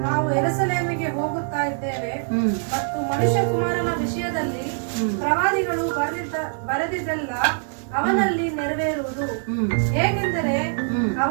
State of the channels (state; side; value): silent; left; 59 dB below the other